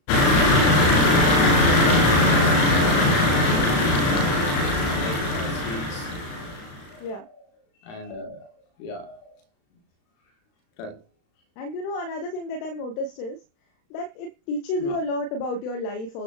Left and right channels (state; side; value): late; right; 36 ms